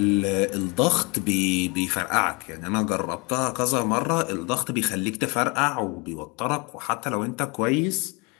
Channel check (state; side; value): quieter; right; 29.4 dB